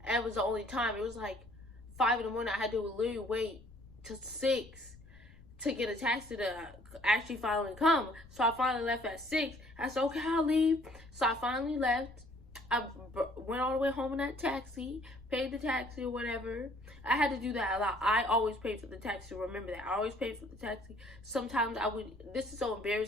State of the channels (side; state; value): left; noise; rumble, 22 dB below the sound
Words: it was the only time. It was like 5 in the morning. I had to literally wait till 6 to get a taxi to actually finally come. So I finally left at 6. I said, okay, I'll leave. So I finally left. I went all the way home in that taxi, paid the taxi or whatever. I had to do that a lot. I always paid for the taxi. Remember that. I always paid for the taxi. Sometimes I would, this is so